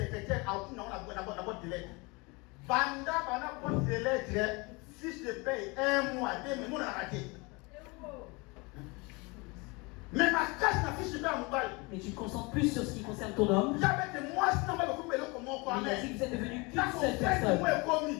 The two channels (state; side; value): quieter; right; 27.0 dB